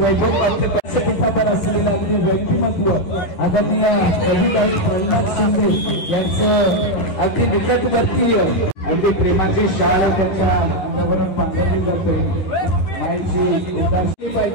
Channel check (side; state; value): right; late; 11 ms